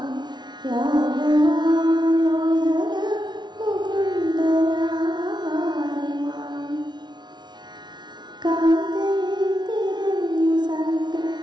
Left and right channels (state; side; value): late; left; 0.21 ms